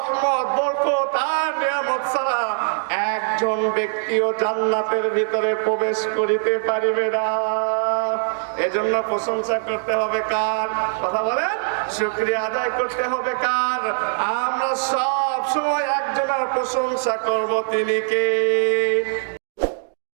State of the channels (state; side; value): silent; left; digital silence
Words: বরকত আর নিয়ামত ছাড়া একজন ব্যক্তিও জান্নাতের ভিতরে প্রবেশ করিতে পারিবে না। এজন্য প্রশংসা করতে হবে কার? কথা বলেন, শুকরিয়া আদায় করতে হবে কার? আমরা সব সময় একজনের প্রশংসা করব, তিনি কে?